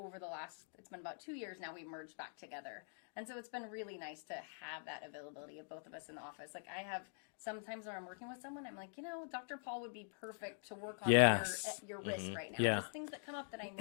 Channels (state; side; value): silent; right; digital silence